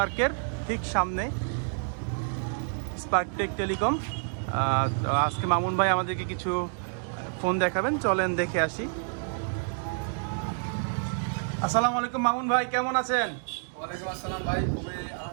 ঠিক সামনে স্পার্ক টেক টেলিকম। আজকে মামুন ভাই আমাদেরকে কিছু ফোন দেখাবেন, চলেন দেখে আসি। আসসালামু আলাইকুম মামুন ভাই, কেমন আছেন? ওয়ালাইকুম আসসালাম ভাই,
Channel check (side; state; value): left; silent; 59 dB below the other